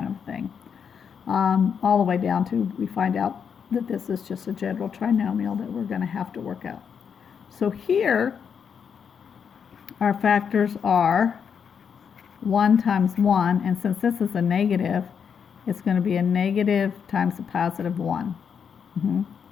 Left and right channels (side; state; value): right; quieter; 7.0 dB